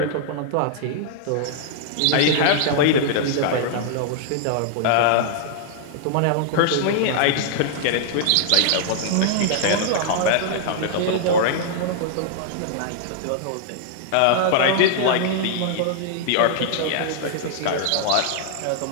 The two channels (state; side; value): different; both; correlation -0.01